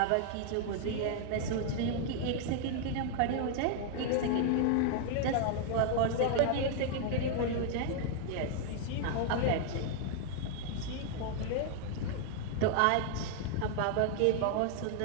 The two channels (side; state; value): both; different; correlation 0.00